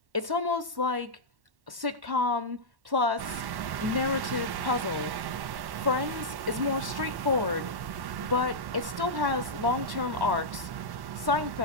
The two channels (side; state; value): left; late; 1.1 ms